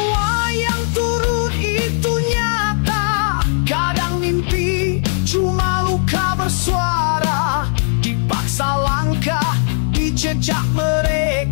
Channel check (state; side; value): silent; right; digital silence